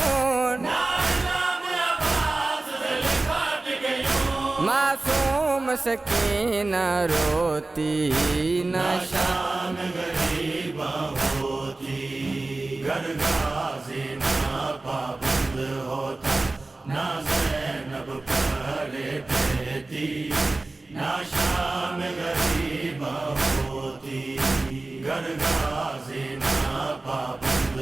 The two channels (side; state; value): left; quieter; 3.2 dB